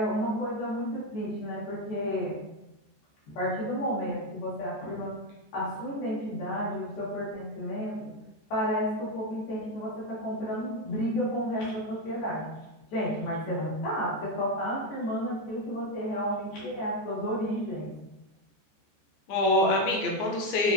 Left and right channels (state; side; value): late; right; 14 ms